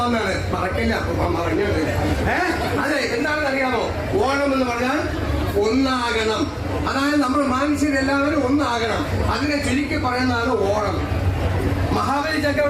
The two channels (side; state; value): both; identical; correlation 1.00